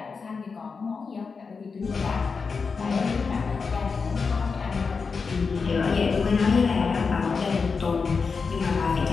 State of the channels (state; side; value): quieter; right; 5.0 dB